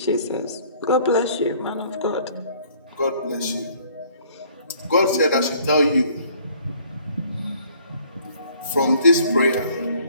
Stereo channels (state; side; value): inverted; both; correlation -0.58